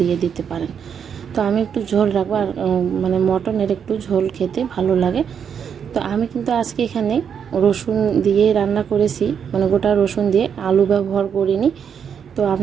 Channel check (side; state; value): left; quieter; 7.6 dB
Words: দিতে পারেন। তো আমি একটু ঝোল রাখবো, আর মানে মটনের একটু ঝোল খেতে ভালো লাগে। তো আমি কিন্তু আজকে এখানে রসুন দিয়ে রান্না করেছি, মানে গোটা রসুন দিয়ে, আলু ব্যবহার করিনি। তো